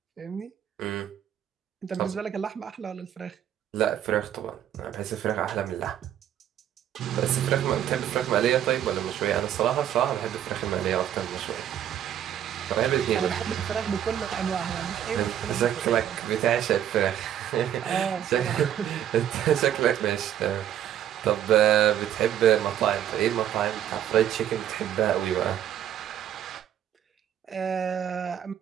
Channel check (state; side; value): quieter; left; 10.5 dB